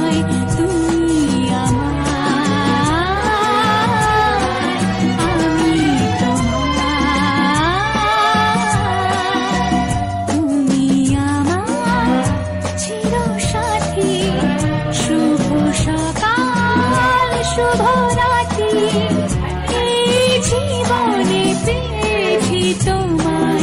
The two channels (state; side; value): identical; both; correlation 1.00